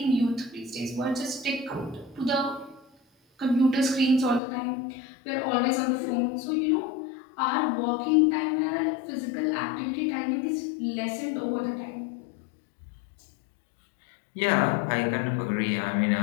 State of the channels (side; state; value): right; drops out; at 4.4 s